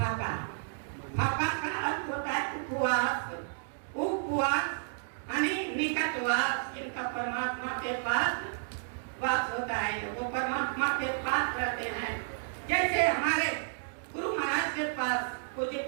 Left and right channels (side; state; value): left; silent; digital silence